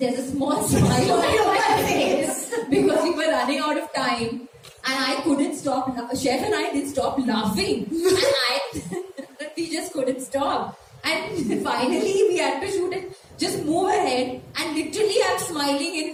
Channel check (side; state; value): both; identical; correlation 1.00